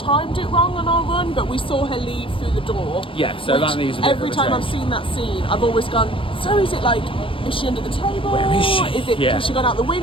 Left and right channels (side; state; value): right; late; 0.25 ms